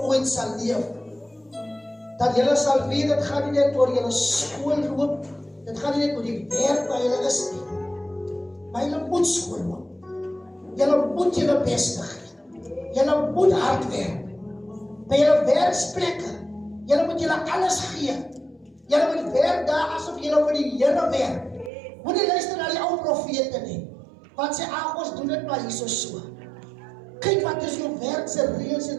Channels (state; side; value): drops out; left; at 21.7 s